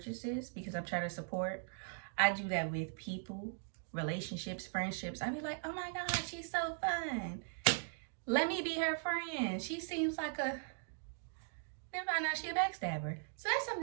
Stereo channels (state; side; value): silent; left; digital silence